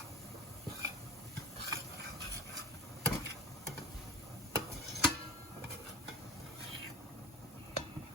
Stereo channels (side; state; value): both; normal; correlation 0.32